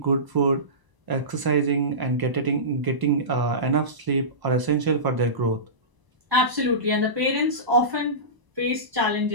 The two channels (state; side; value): late; left; 1.0 ms